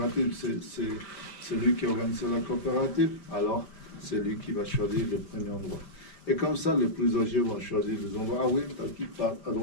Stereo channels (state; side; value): late; right; 4.9 ms